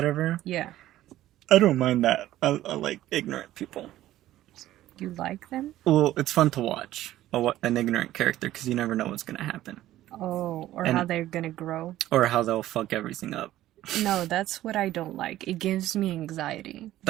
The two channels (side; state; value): left; quieter; 14.2 dB